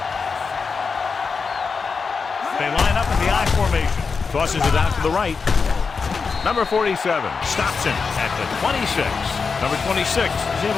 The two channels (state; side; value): quieter; right; 5.1 dB